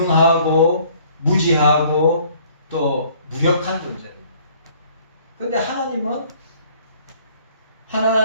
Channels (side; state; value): both; inverted; correlation -0.58